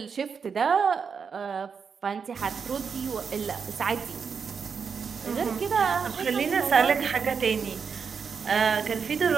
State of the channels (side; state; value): left; quieter; 6.1 dB